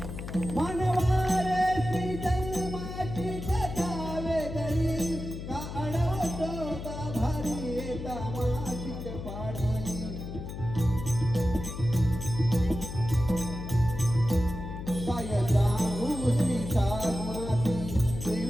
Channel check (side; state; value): left; noise; hum, 8 dB below the sound